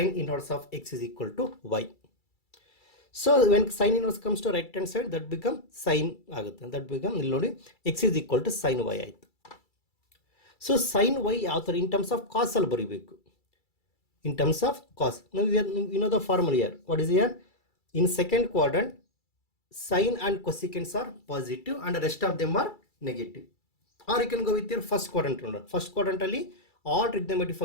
inverse of x is equal to y. So when sine inverse comes to right hand side, that become sine ಆಗುತ್ತೆ. That become ಇಲ್ಲಿ ನೋಡಿ x is equal to sine y ಆಯಿತು. So sine y ಯಾವ ಥರ in terms of cos ಅಲ್ಲಿ ಬರೀಬೇಕು. In terms of cos you know the formula here. What is here? In second quadrant sine and cosecants are positive and the rest of them are negative. Or you can go with your first quadrant. First quadrant ಅಲ್ಲಿ all trigonometric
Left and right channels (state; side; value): late; right; 2.3 ms